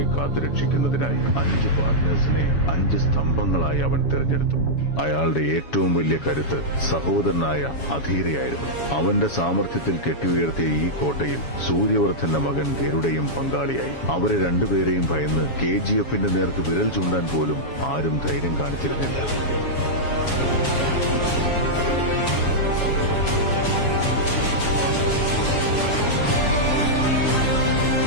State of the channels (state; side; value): late; right; 7.2 ms